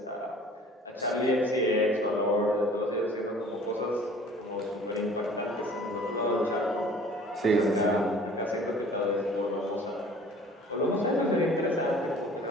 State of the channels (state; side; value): normal; both; correlation 0.49